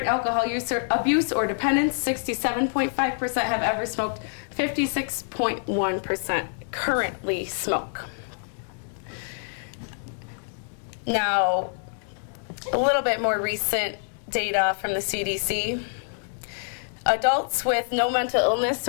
alcohol use or abuse or dependence, 67.5% have ever smoked, 56.1% currently smoke. Now, a little bit more recent data from the CDC. Adults with no mental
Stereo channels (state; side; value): silent; right; digital silence